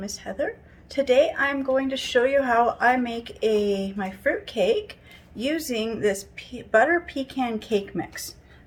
is Heather. Today I'm going to show you how I make my fruit cake using this butter pecan cake mix.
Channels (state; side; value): identical; both; correlation 1.00